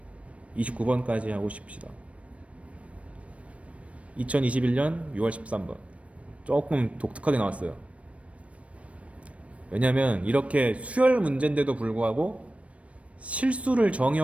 29번까지 하고 싶시다. 2021년 6월 13번 조금 독특하게 나왔어요. 왜냐면 이렇게 수열 문제인데도 불구하고 실수를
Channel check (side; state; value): left; late; 0.064 ms